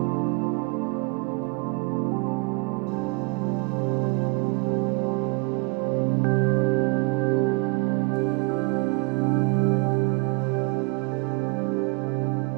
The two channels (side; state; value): left; quieter; 32.0 dB